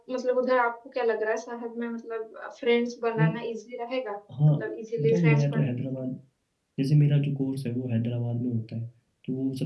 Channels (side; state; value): both; identical; correlation 1.00